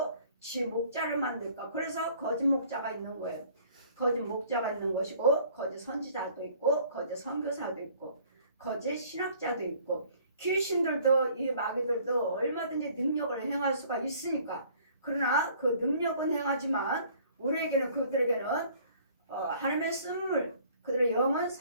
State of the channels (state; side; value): inverted; both; correlation -0.55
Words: 지 목자를 만들까? 그래서 거짓 목자가 있는 거예요. 거짓 목자가 있는 것이고 거짓 선지자도 있고 거짓 선교사도 있고 거짓 신학자도 있고 귀신들도 이 마귀들도 얼마든지 능력을 행할 수가 있으니까 그러나 그 능력은 행하지만 우리에게는 그들에게는 하나님의 쓴물 그들의 영은